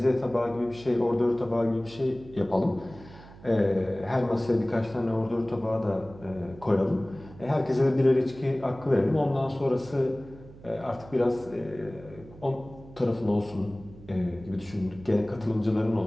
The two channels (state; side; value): noise; right; hum, 19 dB below the sound